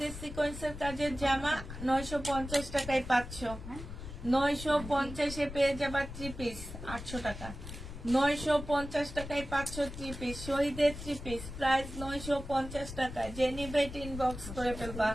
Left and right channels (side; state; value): left; noise; rumble, 10 dB below the sound